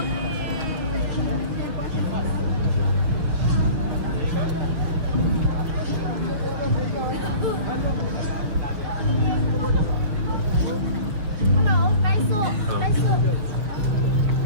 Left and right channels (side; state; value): left; late; 6.3 ms